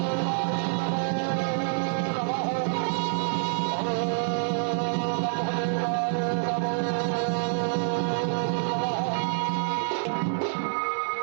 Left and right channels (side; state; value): left; silent; 60 dB below the other